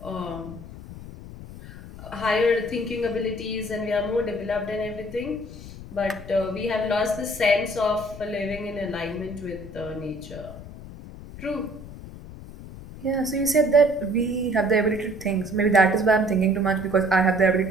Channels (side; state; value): left; noise; rumble, 14 dB below the sound